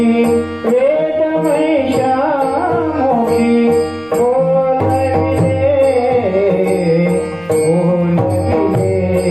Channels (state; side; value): noise; right; rumble, 28 dB below the sound